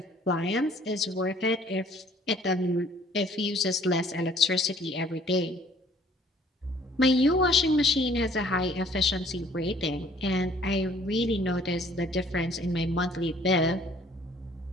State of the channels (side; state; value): both; normal; correlation 0.58